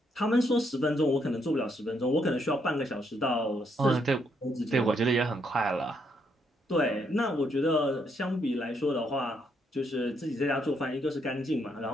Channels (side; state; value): both; normal; correlation 0.74